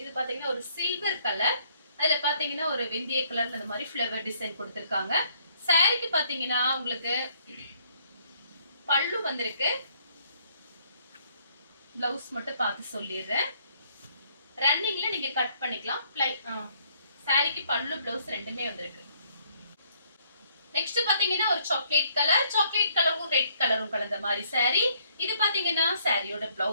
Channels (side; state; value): both; inverted; correlation -0.67